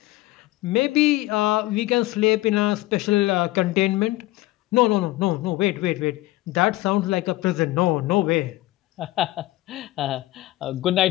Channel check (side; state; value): right; quieter; 18.0 dB